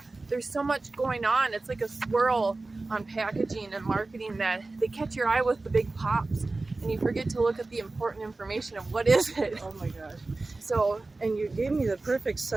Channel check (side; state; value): left; quieter; 3.3 dB